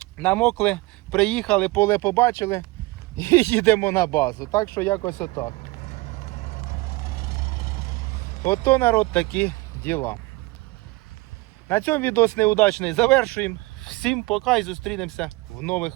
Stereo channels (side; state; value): left; quieter; 22.5 dB